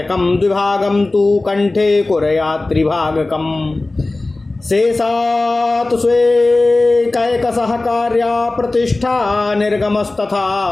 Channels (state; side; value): quieter; right; 3.1 dB